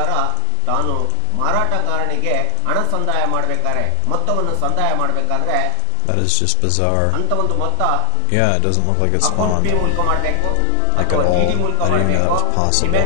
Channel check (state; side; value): different; both; correlation 0.00